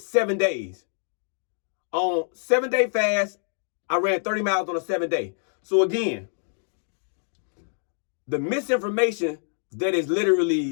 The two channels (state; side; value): silent; right; 61 dB below the other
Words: 7 days. On 7-day fast, I ran 30 miles on a 7-day. So again, the misinformation that is